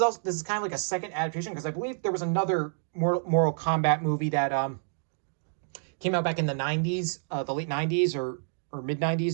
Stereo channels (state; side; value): silent; left; digital silence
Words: kind of like a second adaptation, because I believe there was another Mortal Kombat movie that came out back in the 90s, the late 90s or mid